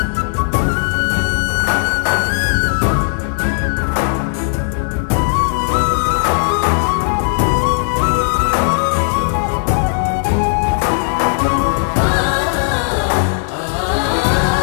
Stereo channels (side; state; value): right; silent; digital silence